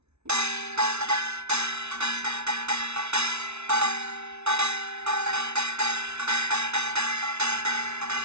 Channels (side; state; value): left; late; 0.81 ms